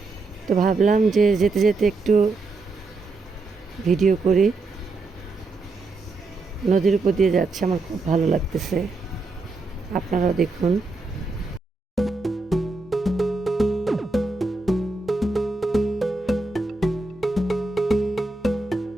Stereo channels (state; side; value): quieter; left; 3.5 dB